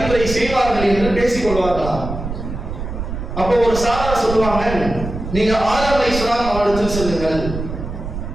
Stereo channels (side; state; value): right; noise; rumble, 7 dB below the sound